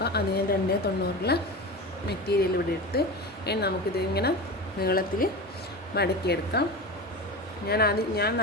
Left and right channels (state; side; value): normal; both; correlation 0.27